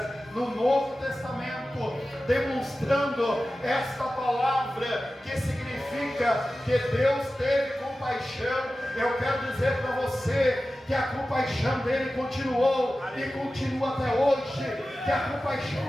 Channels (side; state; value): both; normal; correlation 0.95